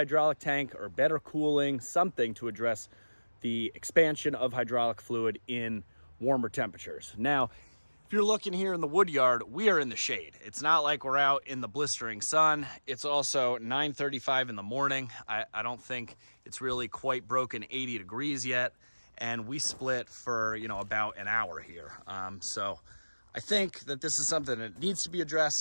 tank or better cooling, something to address the expansion of hydraulic fluid in warmer temperatures. Now, if you're looking here in the wood yard, we are in the shade. It's not like we're out in the blistering sun. It's also 9:35 in the morning. I don't think it's really quite broken 80 degrees yet. And we split for, you know, about an hour here. So I think that this is something that needs to be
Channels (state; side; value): inverted; both; correlation -1.00